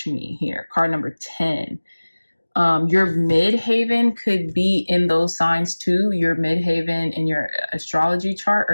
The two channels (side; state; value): both; inverted; correlation -1.00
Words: here, card number 10. Your midhaven could be in those signs too. Your midhaven in your astrology chart or